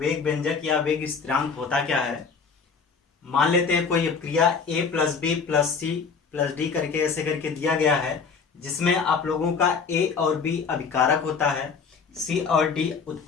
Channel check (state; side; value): quieter; right; 5.5 dB